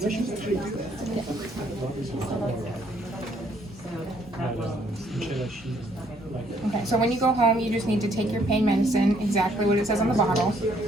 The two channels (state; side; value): normal; both; correlation 0.67